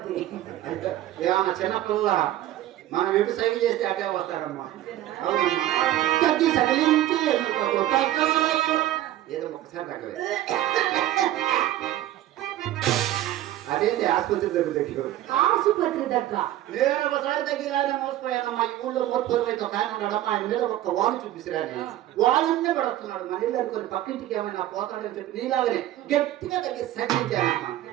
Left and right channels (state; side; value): quieter; left; 13.6 dB